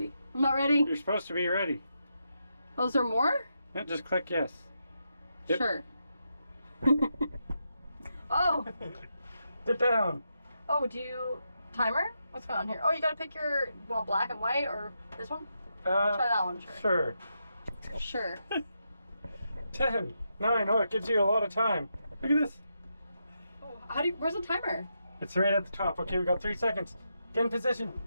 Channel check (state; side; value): inverted; both; correlation -0.84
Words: I'm not ready. You're supposed to be ready. Oh, is there more? Yeah, just click yes. Yep. Sure. Oh. Sit down. Oh, do you timer? What's going on here? Oh, you gotta pick your black and white or this one? Try that one. Sure. Sure. 10, 9. Oh, it gives you a lot of time. Look at this. Oh, how do you? Where's the timer? It's right at the top. Okay, we got 3 seconds. Get in position.